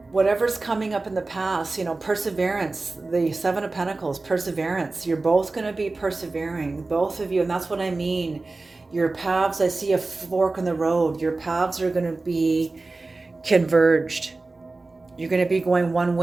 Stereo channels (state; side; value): quieter; left; 3.4 dB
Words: Whatever's coming up in the past, you know, perseverance, the Seven of Pentacles, perseverance. You're both going to be persevering, both of you. And that's what I mean. Your paths, I see a fork in the road. Your paths are going to be converged. You're going to be going one